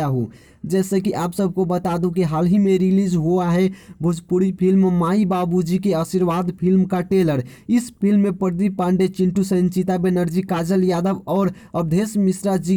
हूँ। जैसे कि आप सबको बता दूं कि हाल ही में रिलीज हुआ है भोजपुरी फिल्म माई बाबूजी के आशीर्वाद फिल्म का ट्रेलर। इस फिल्म में प्रदीप पांडे, चिंटू सेन, चिता बनर्जी, काजल यादव और अवधेश मिश्रा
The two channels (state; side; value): identical; both; correlation 1.00